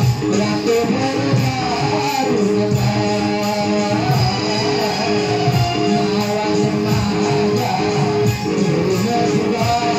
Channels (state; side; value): identical; both; correlation 1.00